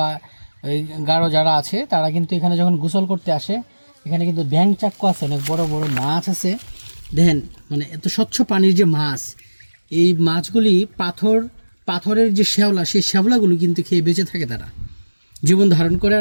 এই গারো যারা আছে তারা কিন্তু এখানে যখন গোসল করতে আসে এখানে কিন্তু ব্যাং চাকুয়া আছে, অনেক বড় বড় মাছ আছে। দেখেন মানে এত স্বচ্ছ পানির যে মাছ, এই মাছগুলি পাথরের যে শ্যাওলা, সেই শ্যাওলাগুলো কিন্তু খেয়ে বেঁচে থাকে, তারা জীবন ধারণ করে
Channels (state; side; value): inverted; both; correlation -1.00